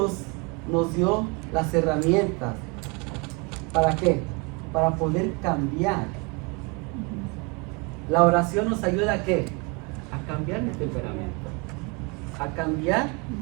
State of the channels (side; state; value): left; quieter; 30.0 dB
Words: nos dio las herramientas? ¿Para qué? Para poder cambiar. La oración nos ayuda a qué? A cambiar mi temperamento, a cambiar